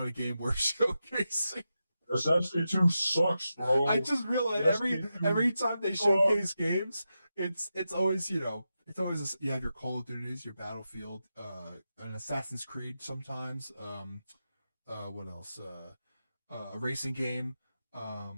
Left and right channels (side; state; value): both; inverted; correlation -0.89